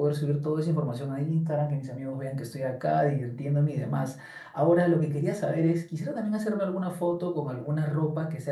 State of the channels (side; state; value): both; identical; correlation 1.00